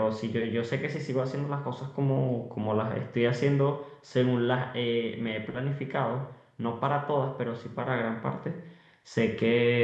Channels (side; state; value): both; identical; correlation 1.00